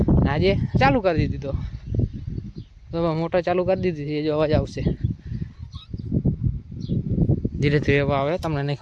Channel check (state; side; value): identical; both; correlation 1.00